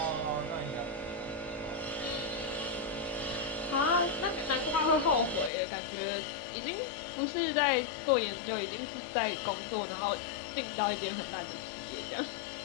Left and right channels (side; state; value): right; drops out; at 5.5 s